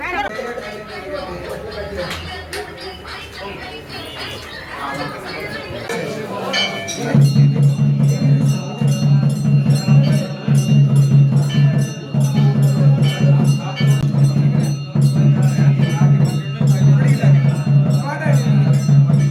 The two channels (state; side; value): identical; both; correlation 1.00